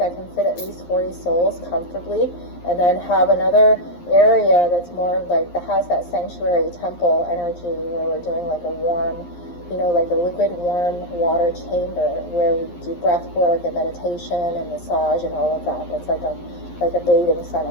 can fit at least 40 souls comfortably, and then have another area that's more like, that has that sanctuary temple energy, where we're doing like a warm, you know, like a liquid warm water chamber where we do breath work and meditation and massage and all of that. That's like a bathing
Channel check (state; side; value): late; right; 11 ms